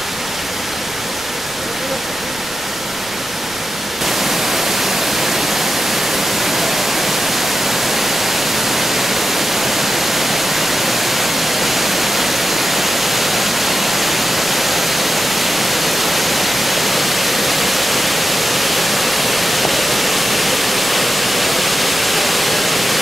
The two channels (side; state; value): right; noise; rumble, 23 dB below the sound